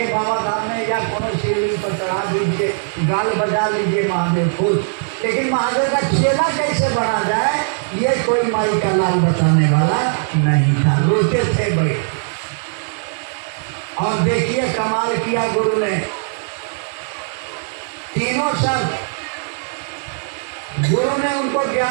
बाबा धाम में या कोनो शिवलिंग पर चढ़ा दीजिए, गाल बजा लीजिए, महादेव खुश। लेकिन महादेव का चेला कैसे बना जाए ये कोई माई का लाल बताने वाला नहीं था। रोते थे भाई। और देखिए कमाल किया गुरु ने, तीनों शब्द गुरु ने उनको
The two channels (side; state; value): left; silent; digital silence